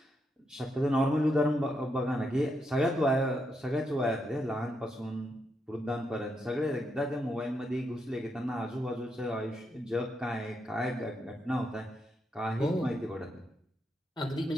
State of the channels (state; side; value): normal; both; correlation 0.81